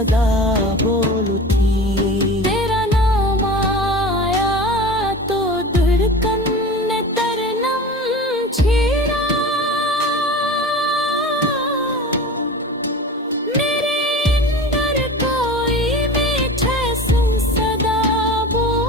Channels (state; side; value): normal; both; correlation 0.35